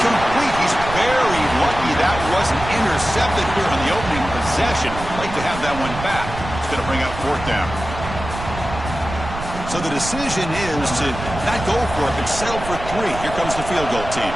He's very lucky that wasn't intercepted here on the opening possession. Like to have that one back. It's going to bring up fourth down. So the decision is to not go for it, but settle for 3. Here comes the field goal team.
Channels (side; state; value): right; noise; rumble, 9 dB below the sound